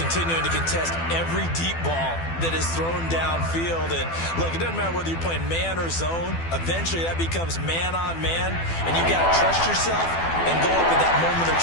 to contest every deep ball that is thrown downfield. And look, it doesn't matter whether you're playing man or zone. Eventually, that becomes man on man. And you got to trust yourself and go up at that moment of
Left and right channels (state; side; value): late; right; 12 ms